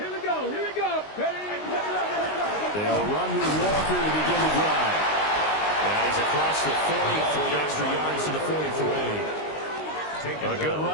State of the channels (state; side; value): late; right; 19 ms